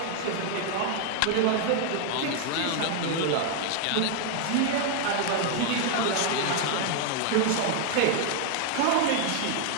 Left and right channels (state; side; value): different; both; correlation 0.00